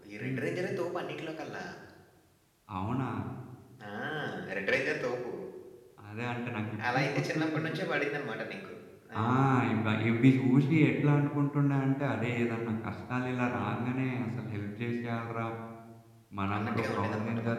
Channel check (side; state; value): both; identical; correlation 1.00